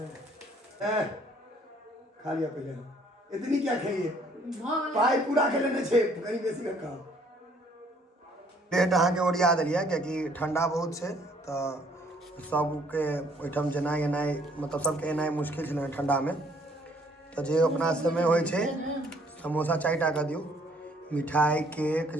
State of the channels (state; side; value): normal; both; correlation 0.62